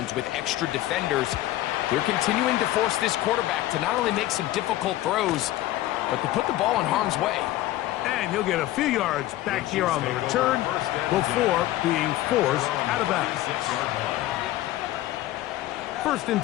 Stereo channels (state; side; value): quieter; right; 15.4 dB